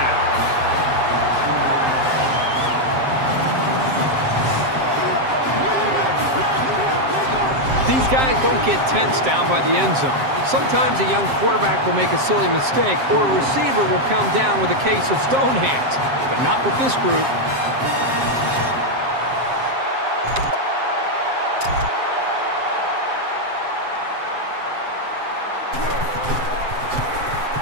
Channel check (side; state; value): left; late; 7.6 ms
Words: These guys don't get tense down by the end zone. Sometimes a young quarterback will make a silly mistake, or a receiver will come down with a case of stone hands, but not with this group.